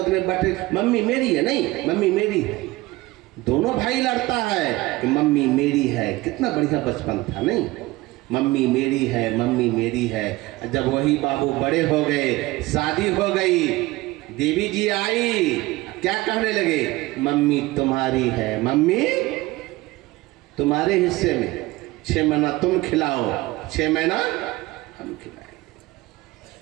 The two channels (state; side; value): quieter; left; 19.8 dB